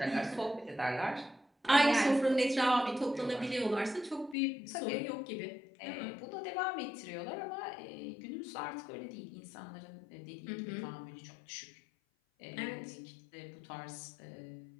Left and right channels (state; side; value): drops out; right; at 4.4 s